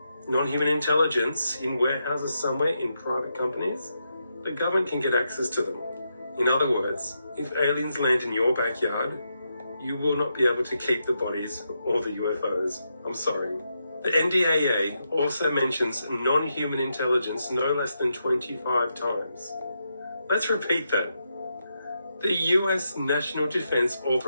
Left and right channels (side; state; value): both; inverted; correlation -0.83